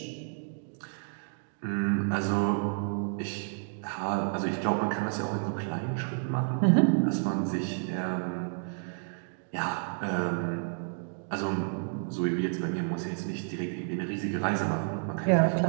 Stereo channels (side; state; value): left; silent; 58 dB below the other